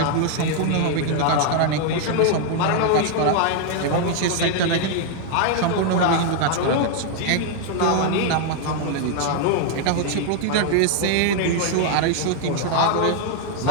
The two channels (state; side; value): different; both; correlation 0.00